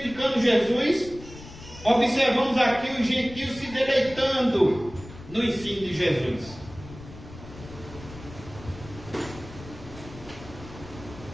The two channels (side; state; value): left; noise; rumble, 16 dB below the sound